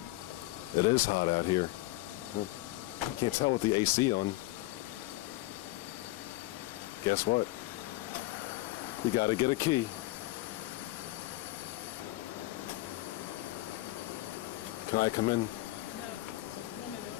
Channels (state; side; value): quieter; right; 18.8 dB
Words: It is hot out here. Can't tell with the AC on. Guess what? We gotta get a key. Can I come in? No, this is women